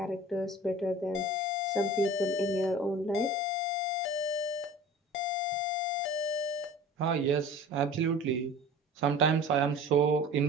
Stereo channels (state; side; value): normal; both; correlation 0.41